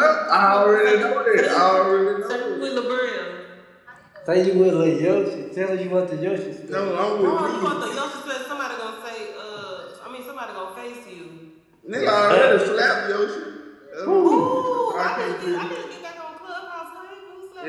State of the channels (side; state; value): both; identical; correlation 1.00